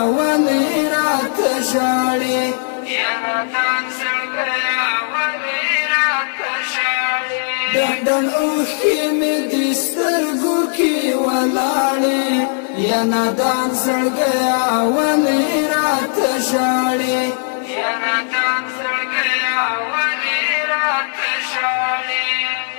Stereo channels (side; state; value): right; silent; digital silence